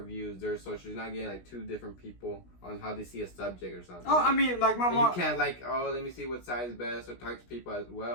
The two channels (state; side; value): late; right; 16 ms